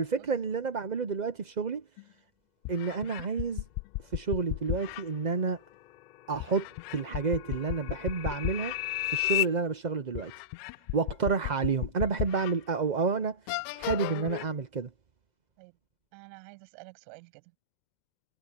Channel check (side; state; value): left; late; 2.0 ms